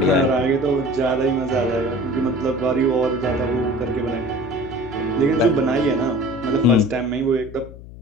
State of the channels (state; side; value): noise; left; hum, 16 dB below the sound